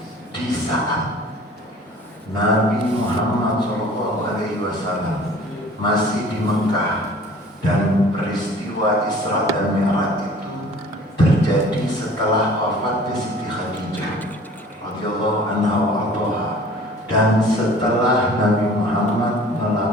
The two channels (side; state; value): both; normal; correlation 0.48